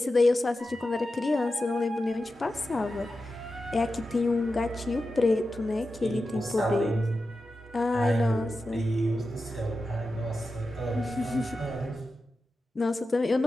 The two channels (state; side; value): normal; both; correlation 0.91